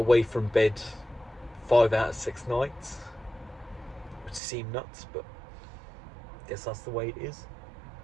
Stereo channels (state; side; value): drops out; left; at 4.4 s